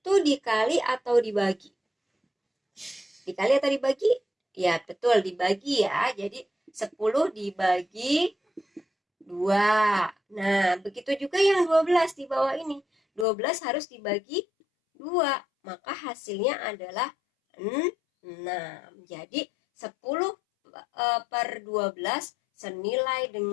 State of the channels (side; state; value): right; drops out; at 13.2 s